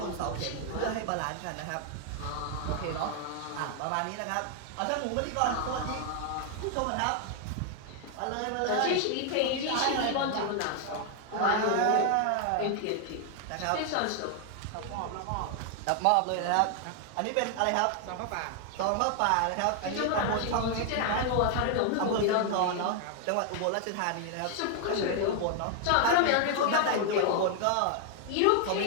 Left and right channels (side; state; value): both; different; correlation 0.00